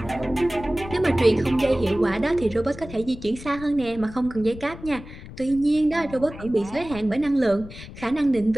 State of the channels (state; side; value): noise; left; rumble, 15 dB below the sound